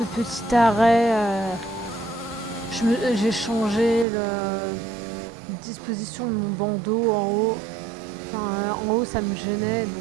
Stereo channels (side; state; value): left; drops out; at 4.0 s